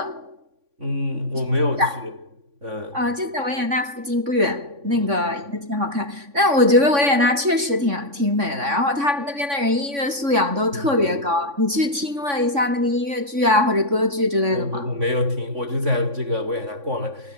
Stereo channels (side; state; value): left; late; 3.5 ms